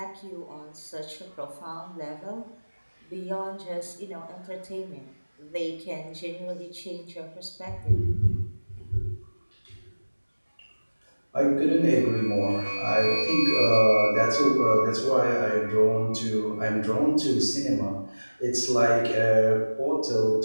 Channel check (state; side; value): inverted; both; correlation -1.00